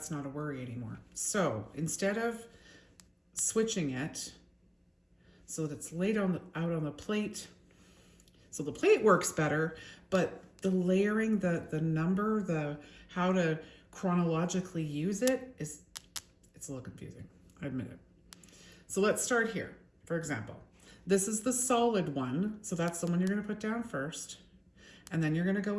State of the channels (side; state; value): both; identical; correlation 1.00